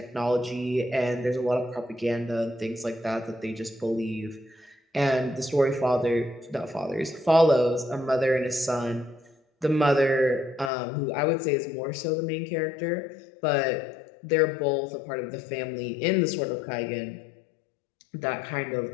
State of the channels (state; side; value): drops out; right; at 10.7 s